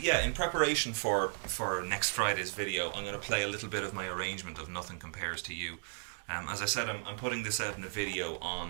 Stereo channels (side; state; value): left; silent; digital silence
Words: in preparation for next Friday's video, I'm going to play a little bit of my arrangement of Nothing Compares to You. As I said, I'm putting this out in a video